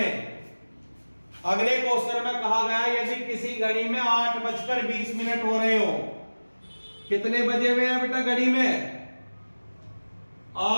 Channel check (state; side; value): inverted; both; correlation -1.00